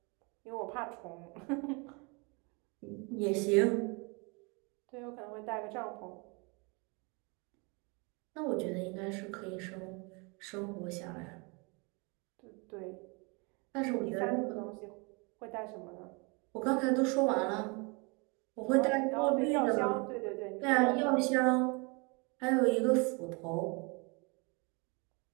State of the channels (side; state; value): left; quieter; 30.7 dB